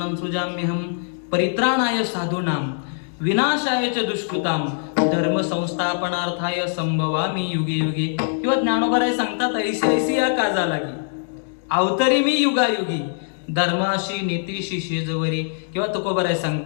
सृजाम्यहं परित्राणाय साधूनां विनाशाय च दुष्कृताम धर्म संस्थापनार्थाय संभवामी युगे युगे. किंवा ज्ञानोबराय सांगतात ऐसी ऐसी या काजा लागी अवतरी मी युगायुगी धर्माशी नीतीशी शेजवरी. किंवा तुकोबराय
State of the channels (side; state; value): right; silent; digital silence